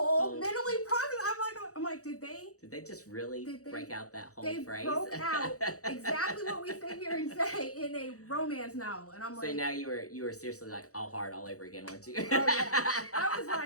processed. I'm like, did they just really break out that whole phrase? They broke out exactly what we sit here and say in a romance novel, and I'm like. So now you were seriously like all hard all over again, weren't you? Oh yeah.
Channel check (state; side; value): late; right; 0.65 ms